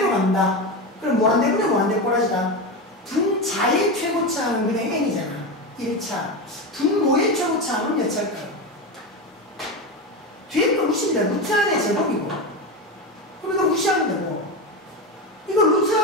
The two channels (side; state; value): both; normal; correlation 0.18